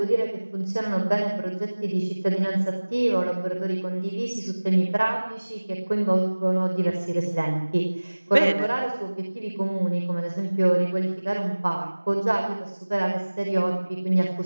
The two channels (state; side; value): inverted; both; correlation -1.00